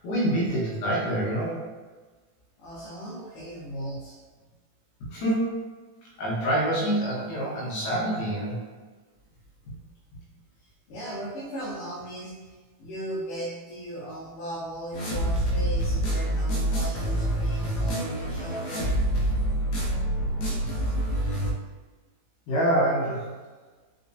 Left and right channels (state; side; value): late; right; 18 ms